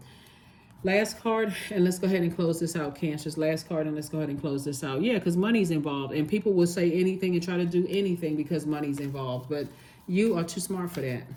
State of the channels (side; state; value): both; identical; correlation 1.00